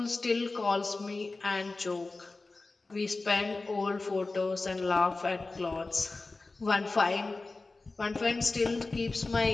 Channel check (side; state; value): right; quieter; 3.5 dB